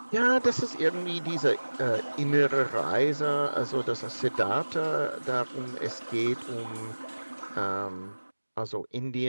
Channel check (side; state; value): both; inverted; correlation -1.00